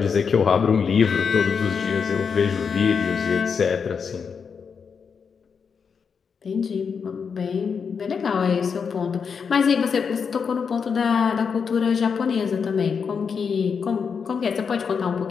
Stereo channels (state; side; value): quieter; right; 6.1 dB